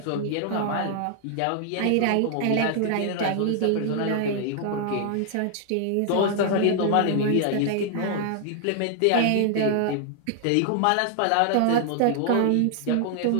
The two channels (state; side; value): different; both; correlation 0.00